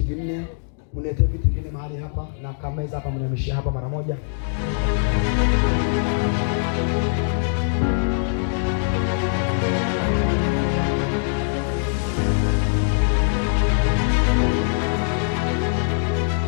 vinne, mnete viti vinne mahali hapa na kameza hapa, mnameshia hapa mara moja.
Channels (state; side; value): silent; right; digital silence